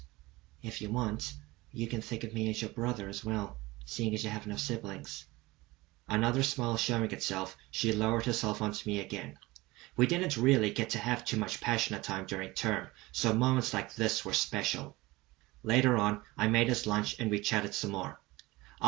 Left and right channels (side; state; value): left; quieter; 20.8 dB